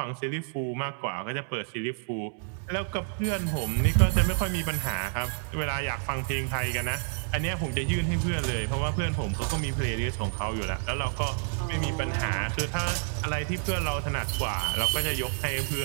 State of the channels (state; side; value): silent; left; digital silence